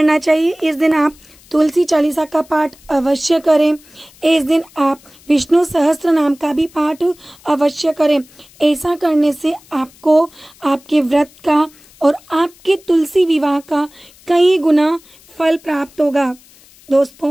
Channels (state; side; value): noise; left; hiss, 26 dB below the sound